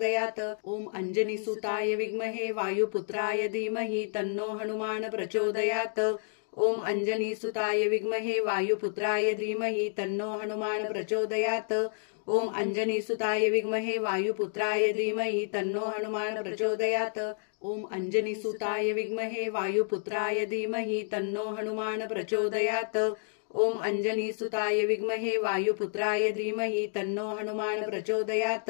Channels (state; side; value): silent; right; digital silence